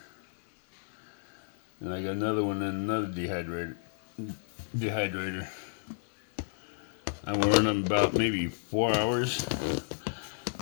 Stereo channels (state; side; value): silent; right; digital silence